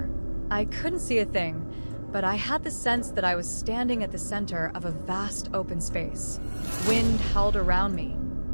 I couldn't see a thing, but I had the sense that I was standing at the center of a vast open space. Wind howled around me.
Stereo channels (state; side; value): inverted; both; correlation -1.00